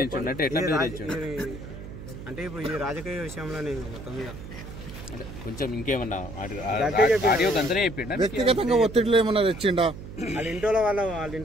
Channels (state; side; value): noise; right; hum, 12 dB below the sound